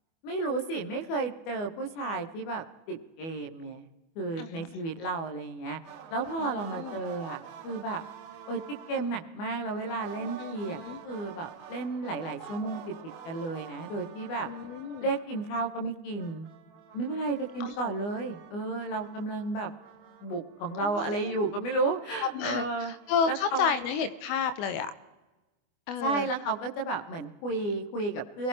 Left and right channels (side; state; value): right; late; 24 ms